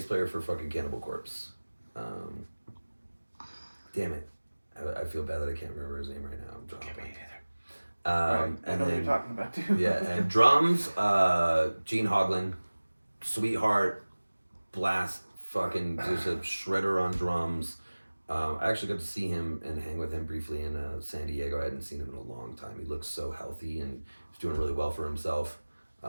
player for fucking Cannibal Corpse. Damn it. I feel bad that I can't remember his name right now. I'm drawing a blank. Right, I And know what then, you're talking about too. yeah, and drums, Gene Hoglan, sweetheart, blast, fucking just a shredder on drums. I actually got to see him and hang with him briefly in San Diego. I hadn't seen him in a long time. He looks so healthy and he's doing really well for himself.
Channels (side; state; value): both; inverted; correlation -1.00